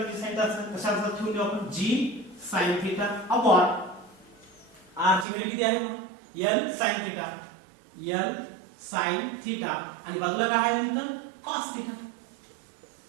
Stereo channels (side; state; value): left; drops out; at 5.2 s